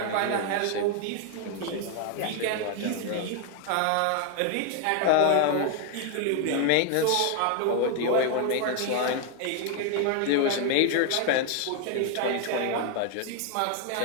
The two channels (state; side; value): different; both; correlation 0.00